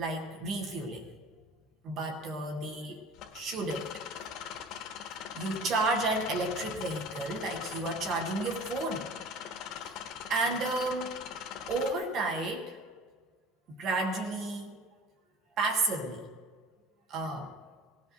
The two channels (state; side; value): normal; both; correlation 0.41